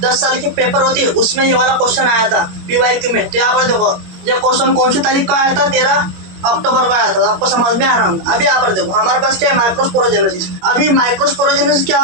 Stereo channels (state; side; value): late; left; 21 ms